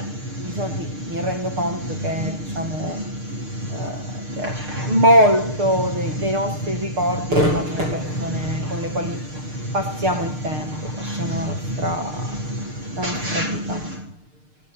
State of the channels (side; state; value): left; late; 6.6 ms